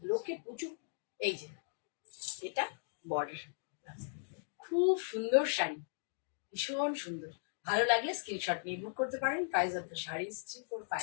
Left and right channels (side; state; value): right; silent; digital silence